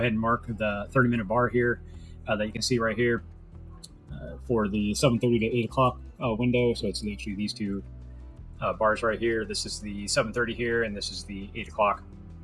and mark the 30-minute bar here that you can see right here for the 7:30 to 8 o'clock window. So it's actually these two bars right here. This is the 7:30 here, and this is the 8 o'clock.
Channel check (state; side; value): identical; both; correlation 1.00